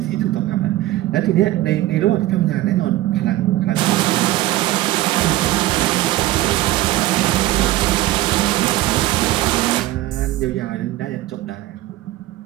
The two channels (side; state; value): left; quieter; 16.0 dB